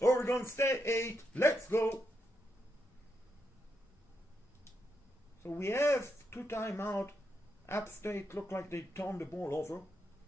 State 8. Let's go! So we have 2 timeout. App State looked like they turned the ball over.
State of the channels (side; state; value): both; normal; correlation 0.82